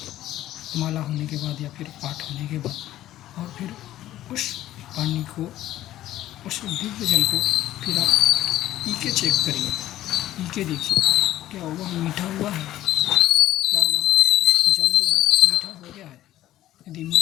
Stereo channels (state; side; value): quieter; right; 13.9 dB